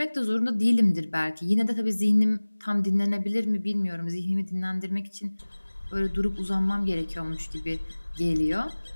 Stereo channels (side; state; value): both; inverted; correlation -1.00